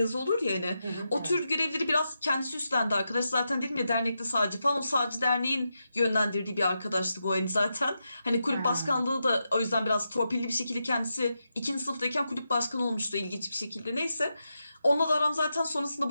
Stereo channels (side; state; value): both; inverted; correlation -0.87